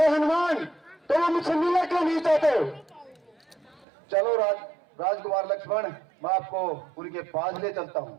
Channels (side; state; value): left; drops out; at 3.9 s